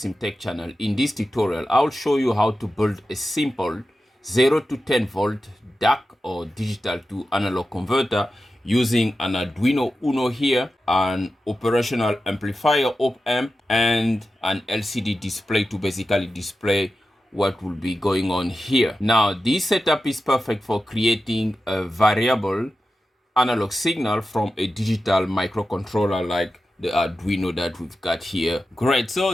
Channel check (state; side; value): normal; both; correlation 0.92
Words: channel. In this tutorial, I'll show you how to build a simple 0 to 10 volt DAC or digital to analog converter using an Arduino Uno here, an operational amplifier op-amp, and an LCD display to basically display what will be going on here. Now, this setup is perfect for creating a variable analog signal from a digital microcontroller like the Arduino that we've got here. Great, so